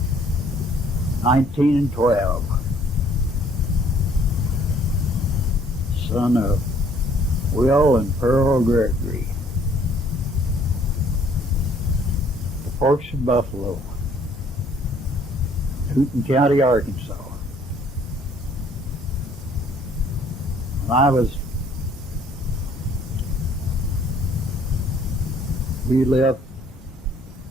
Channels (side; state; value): both; normal; correlation 0.60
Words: 1912, son of Will and Pearl Gregory, the Forks of Buffalo, Newton County, Arkansas. We lived